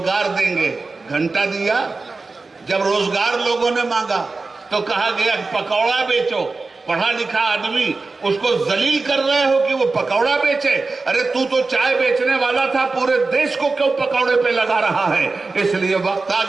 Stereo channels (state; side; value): quieter; left; 3.8 dB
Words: देंगे। घंटा दिया। जब रोजगार लोगों ने मांगा तो कहा गया पकौड़ा बेचो। पढ़ा लिखा आदमी, उसको जलील कर रहे हो कि वो पकौड़ा बेचे। अरे तू तो चाय बेचने वाला था, पूरे देश को क्यों पकौड़े पे लगा रहा है? इसलिए वक्त आ